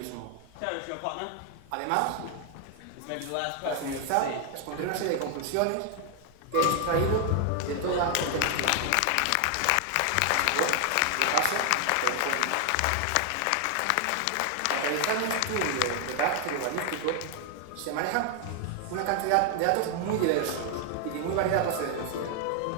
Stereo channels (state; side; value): different; both; correlation 0.00